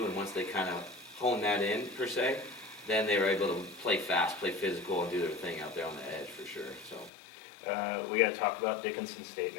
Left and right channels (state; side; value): drops out; right; at 7.1 s